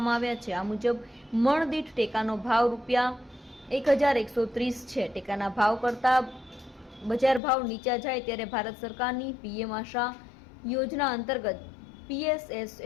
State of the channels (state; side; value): drops out; right; at 7.4 s